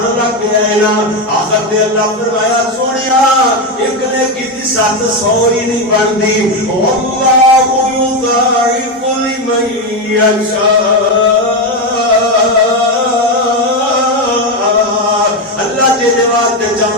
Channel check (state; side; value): normal; both; correlation 0.10